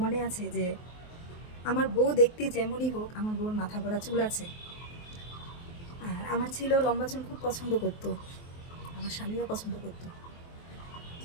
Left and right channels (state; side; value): late; right; 23 ms